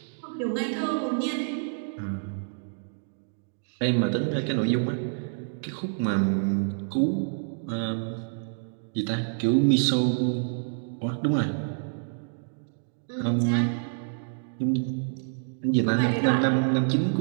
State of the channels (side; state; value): left; silent; digital silence